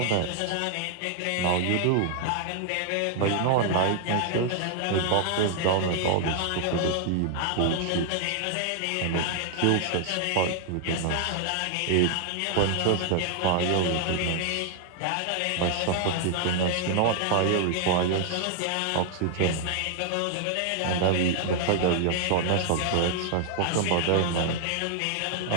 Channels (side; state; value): both; different; correlation 0.00